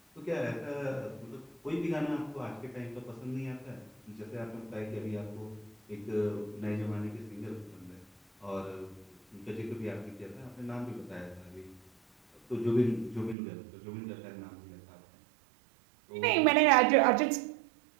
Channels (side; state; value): left; drops out; at 13.4 s